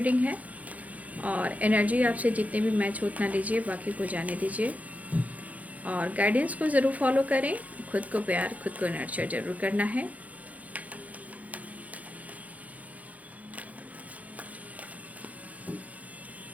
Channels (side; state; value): left; late; 0.072 ms